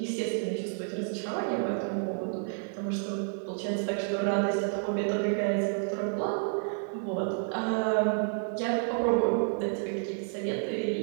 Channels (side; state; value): left; silent; 58 dB below the other